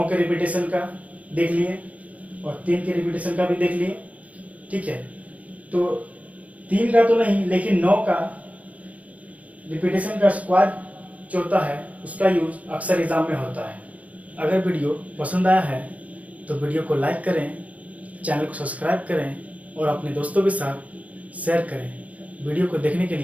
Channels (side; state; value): left; late; 0.069 ms